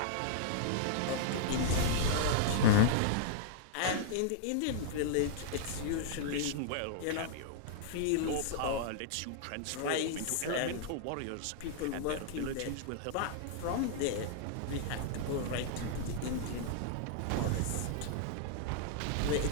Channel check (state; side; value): different; both; correlation -0.01